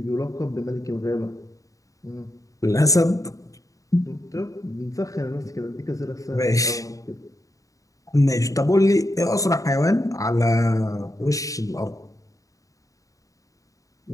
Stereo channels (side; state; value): right; late; 0.16 ms